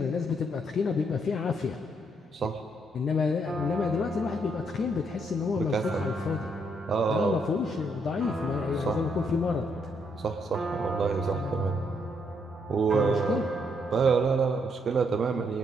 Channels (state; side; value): normal; both; correlation 0.74